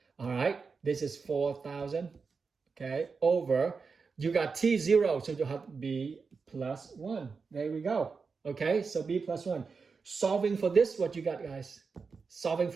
all right, this is 4,000, okay, over, you got T0, so you have B plus 1. There we go. Okay, so B plus 1. Solving for this, what you got, guys? Solving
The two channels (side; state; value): left; quieter; 5.0 dB